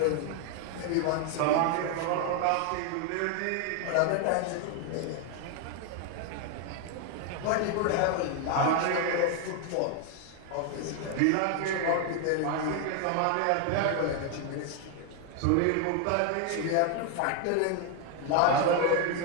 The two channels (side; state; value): both; different; correlation 0.01